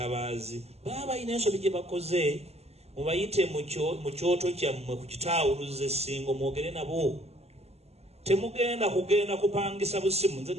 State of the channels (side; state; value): left; late; 0.30 ms